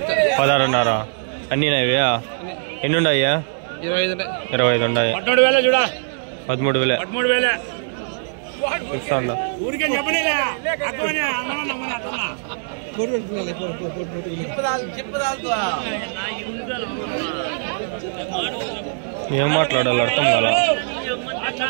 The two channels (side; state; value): left; silent; digital silence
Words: 16,500. అన్నీ నావే? ఎన్ని ఉన్నాయా? 25 ఉన్నాయి. 13,000 ఇస్తాను. ఏం మాట్లాడాలి అర్థం కదా.